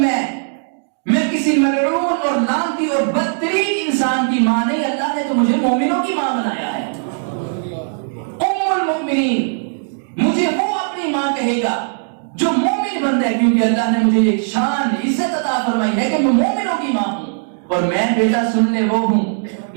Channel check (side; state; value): left; silent; digital silence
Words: میں کسی ملعون اور لعنتی اور بدترین انسان کی ماں نہیں، اللہ نے تو مجھے مومنوں کی ماں بنایا ہے۔ ام المؤمنین مجھے وہ اپنی ماں کہے گا جو مومن بندہ ہے، کیونکہ اللہ نے مجھے ایک شان عزت عطا فرمائی ہے کہ میں مومنوں کی ماں ہوں، اور میں بیٹا سننے وہ ہوں۔